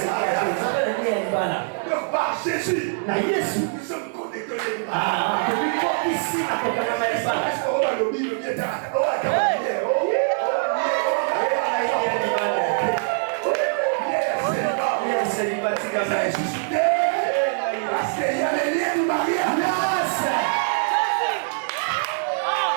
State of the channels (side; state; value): left; silent; digital silence